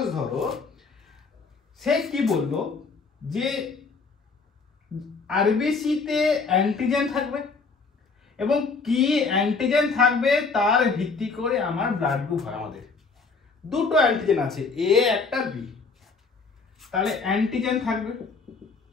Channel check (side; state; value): right; quieter; 4.5 dB